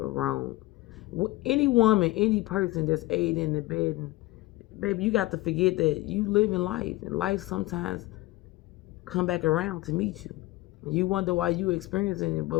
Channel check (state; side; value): quieter; right; 19.3 dB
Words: Any woman, any person that's aiding in the bed, and baby, you got to forget that you live in life, and life sometimes come back around to meet you. You wonder why you experiencing it,